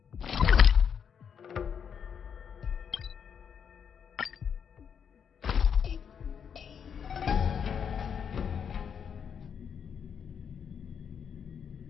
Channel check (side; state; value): right; quieter; 7.4 dB